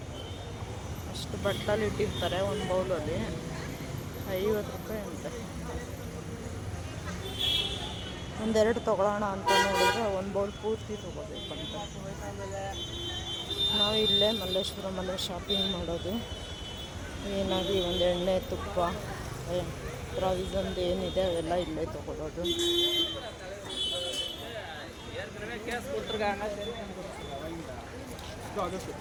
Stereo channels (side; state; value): both; identical; correlation 1.00